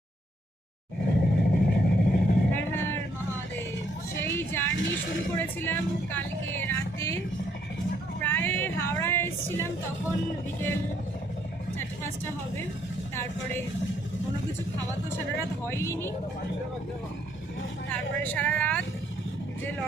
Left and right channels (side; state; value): both; normal; correlation 0.70